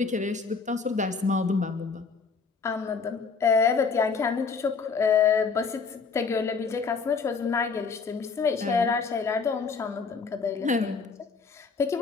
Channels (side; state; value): right; quieter; 5.1 dB